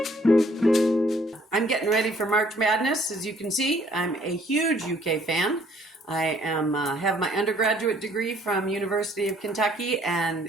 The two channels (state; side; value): normal; both; correlation 0.61